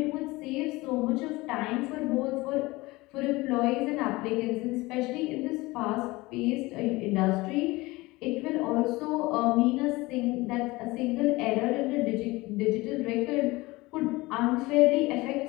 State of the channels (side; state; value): right; quieter; 21.4 dB